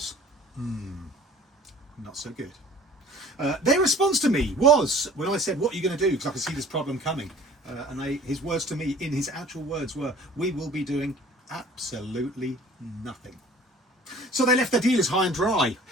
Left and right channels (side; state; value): both; normal; correlation 0.48